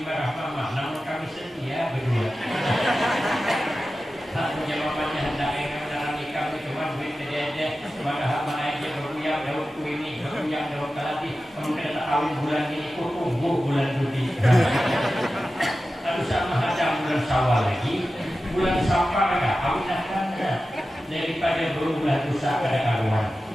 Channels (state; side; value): normal; both; correlation 0.94